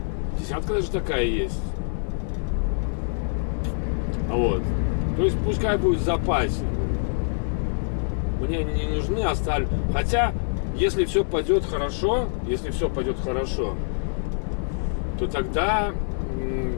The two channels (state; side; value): silent; right; 58 dB below the other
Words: Десятка даже такая есть. Вот. То есть пускай будет в запасе. Мне они не нужны, оставлю. Хотя, если все пойдет хорошо, то тогда